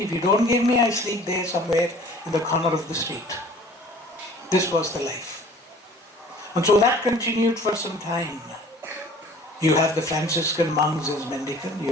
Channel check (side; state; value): both; normal; correlation 0.49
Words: you don't give me, I sleep there somewhere in the corner of the street. This was the life. And so that continued for some time. You have the Franciscan monks as mendicant.